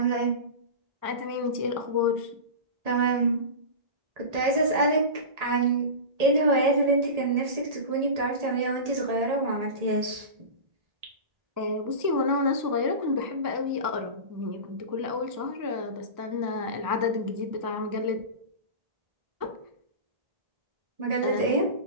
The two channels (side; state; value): left; late; 1.8 ms